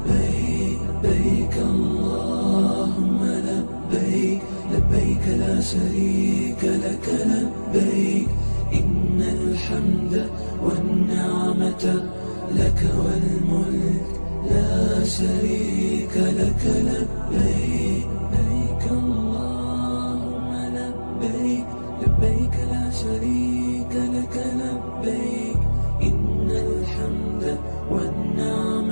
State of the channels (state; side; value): inverted; both; correlation -1.00